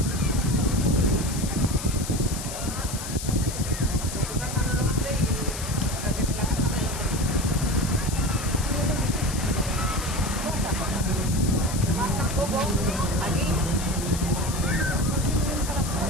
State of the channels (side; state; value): left; noise; hiss, 8 dB below the sound